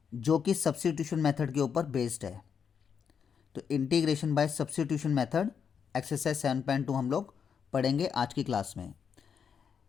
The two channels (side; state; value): right; quieter; 7.0 dB